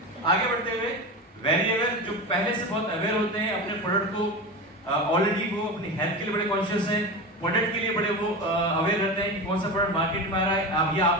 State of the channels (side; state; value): both; normal; correlation 0.24